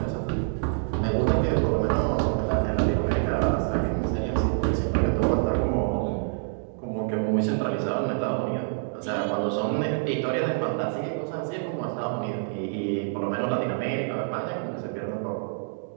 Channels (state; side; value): silent; left; digital silence